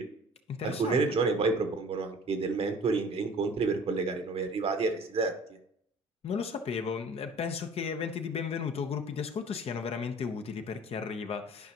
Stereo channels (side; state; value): both; normal; correlation 0.47